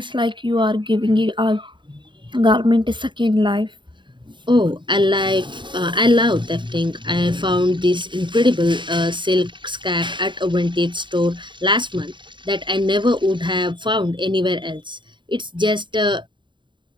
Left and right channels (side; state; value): left; late; 0.23 ms